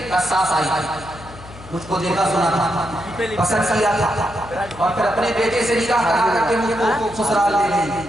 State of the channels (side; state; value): left; noise; hum, 18 dB below the sound